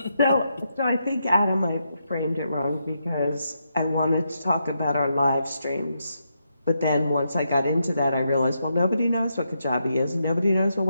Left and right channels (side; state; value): both; inverted; correlation -0.82